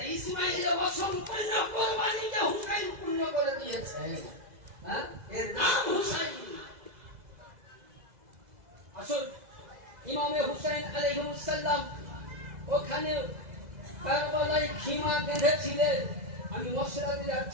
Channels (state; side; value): late; left; 2.0 ms